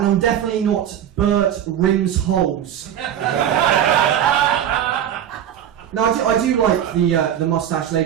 definitely not Bert Rimsholes. No, I do like the moustache,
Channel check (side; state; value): left; quieter; 10.1 dB